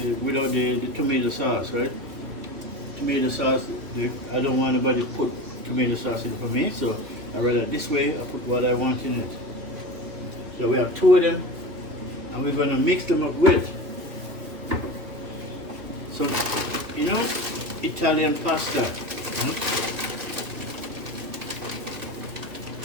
tomato sauce, right? Tomato sauce. I don't want anybody to put tomato sauce in it for me, so I rather this way. I put what I want in it. So we have two of them, and we're gonna mix them up with some, Italian pasta.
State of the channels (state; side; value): late; left; 2.8 ms